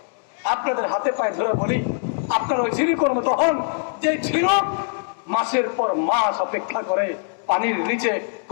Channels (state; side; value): silent; right; digital silence